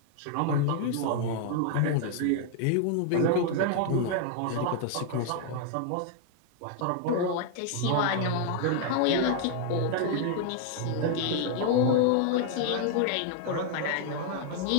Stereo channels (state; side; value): different; both; correlation 0.00